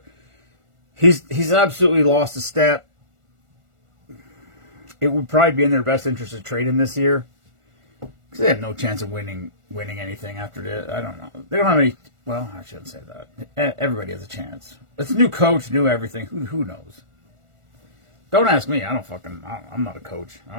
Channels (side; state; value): left; late; 1.4 ms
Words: He's absolutely lost a step. It would probably be in their best interest to trade him this year, because they have no chance of winning anything after this. I don't know. They don't have any. Well, I shouldn't say that. Everybody has a chance. It's a new coach, new everything. Who knows? Don't ask me. I'm not a coach. I